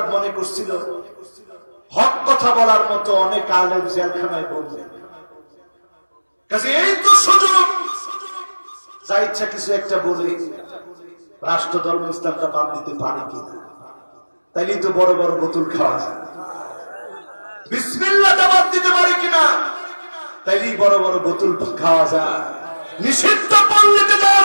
মনে করছিল হক কথা বলার মতো অনেক আলেম জেলখানায় বললেন, কাজে এই তো সুযোগ, যা ইচ্ছা কিছু একটা বলে রাষ্ট্র ধর্ম ইসলামটা বাদ দিতে পারে কিনা, তাইলেই তো বড় বড় বোতল খাওয়া যায়। বিসমিল্লাহটা বাদ দিতে পারে কিনা, তাইলেই বড় বড় বোতল খাওয়া যায়, নিষিদ্ধ পল্লীতে যাওয়া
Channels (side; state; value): both; inverted; correlation -1.00